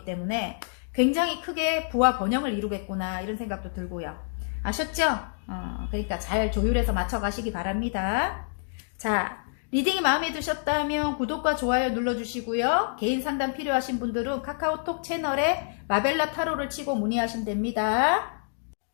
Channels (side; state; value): right; silent; digital silence